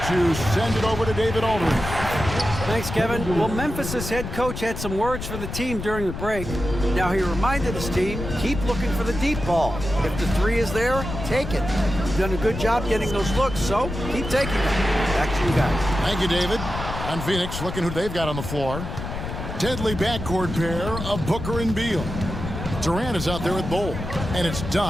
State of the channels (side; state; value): left; noise; rumble, 7 dB below the sound